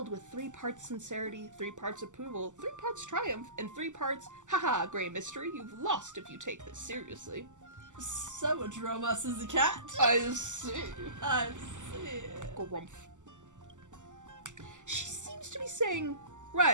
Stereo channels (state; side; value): late; left; 0.85 ms